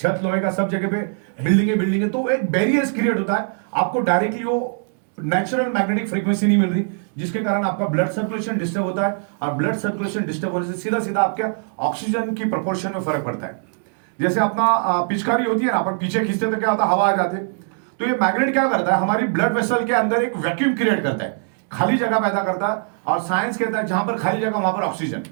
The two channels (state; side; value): silent; left; 60 dB below the other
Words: लोहे का, सब जगह पे बिल्डिंग है। तो एक बैरियर्स क्रिएट होता है, आपको डायरेक्टली वो नेचुरल मैग्नेटिक फ्रीक्वेंसी नहीं मिल रही, जिसके कारण आपका ब्लड सर्कुलेशन डिस्टर्ब होता है। और ब्लड सर्कुलेशन डिस्टर्ब होने से सीधा सीधा आपके ऑक्सीजन की प्रोपोर्शन में फर्क पड़ता है। जैसे अपना पिचकारी होती है ना, अपन पीछे खींचते तो क्या होता है, हवा आ जाती है। तो ये मैग्नेट क्या करता है, हमारी ब्लड वेसल के अंदर एक वैक्यूम क्रिएट करता है, खाली जगह पैदा करता है। और साइंस कहता है जहां पर खाली जगह वहां पर ऑक्सीजन,